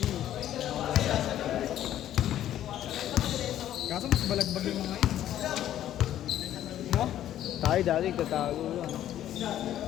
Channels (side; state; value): right; quieter; 11.9 dB